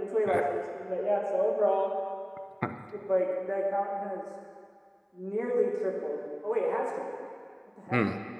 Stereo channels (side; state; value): both; identical; correlation 1.00